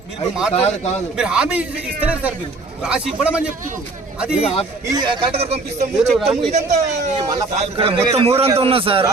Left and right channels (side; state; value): left; quieter; 3.5 dB